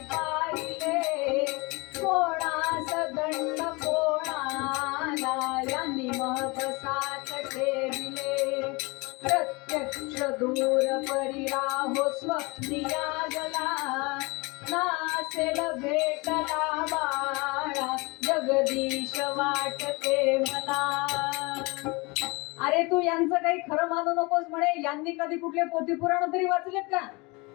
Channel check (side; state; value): right; quieter; 26.3 dB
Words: पाहिले, कोणास दंड कोणाला यांनी महबसात ठेविले. प्रत्यक्ष दूर परिराहो स्वप्निया गला, नासेल भेटला बाळा जगदीश वाटते मला. अरे तू यांचं काही खरं मानू नकोस म्हणे. यांनी कधी कुठले पोथी पुराण तरी वाचलेत का?